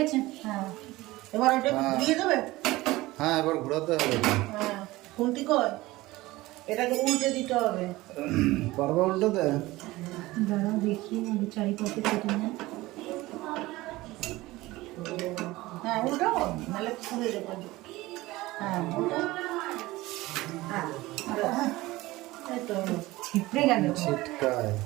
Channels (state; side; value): quieter; left; 19.1 dB